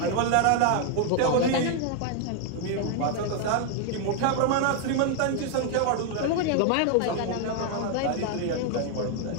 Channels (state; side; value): different; both; correlation 0.01